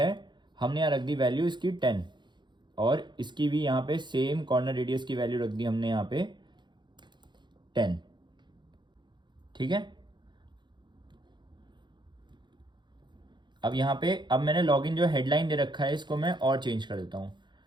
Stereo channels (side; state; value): left; late; 0.22 ms